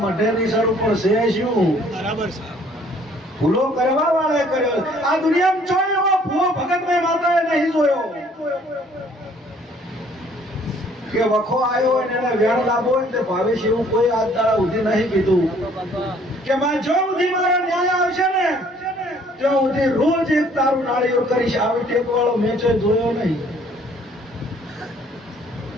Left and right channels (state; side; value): normal; both; correlation 0.59